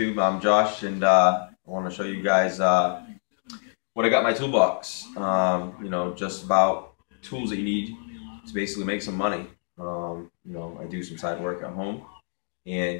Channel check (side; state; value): right; silent; 61 dB below the other